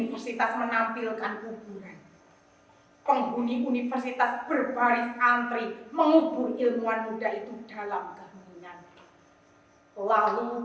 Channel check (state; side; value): identical; both; correlation 1.00